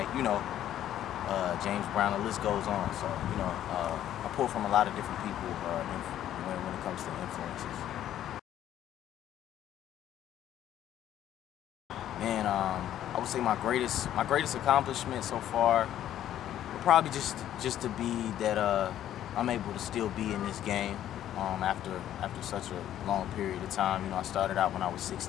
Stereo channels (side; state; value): right; quieter; 11.6 dB